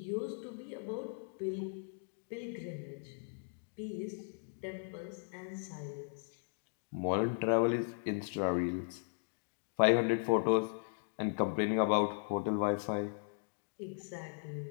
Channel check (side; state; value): right; silent; digital silence